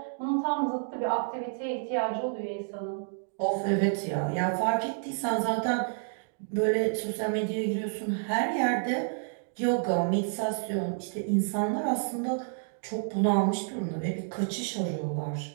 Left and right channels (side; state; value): left; silent; digital silence